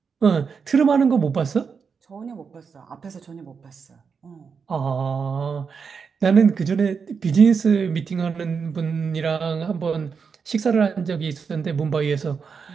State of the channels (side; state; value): left; quieter; 5.8 dB